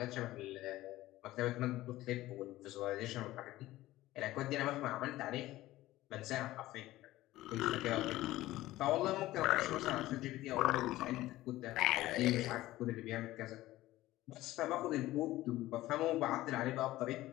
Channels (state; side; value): quieter; right; 16.4 dB